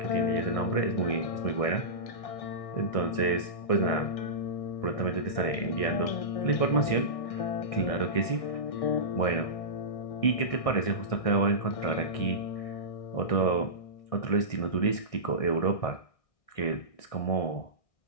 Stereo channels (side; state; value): right; late; 1.6 ms